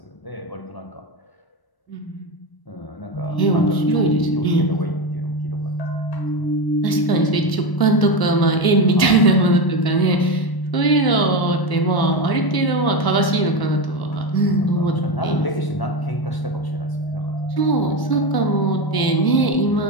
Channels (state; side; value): late; right; 1.0 ms